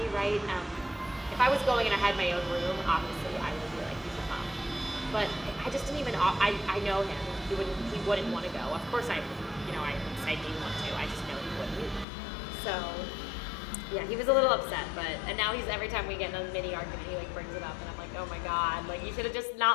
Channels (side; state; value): right; drops out; at 12.1 s